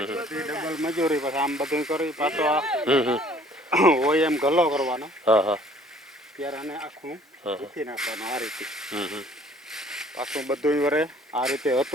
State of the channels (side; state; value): both; normal; correlation 0.56